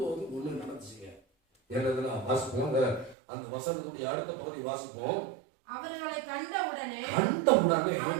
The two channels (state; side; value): drops out; left; at 3.2 s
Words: ஒண்ணு நடந்துச்சுங்க. என்னதுன்னா வாசிப்போம். அந்த வசனத்துடைய அடுத்த பகுதி வாசிப்போம். அவர்களை கண்டவுடனே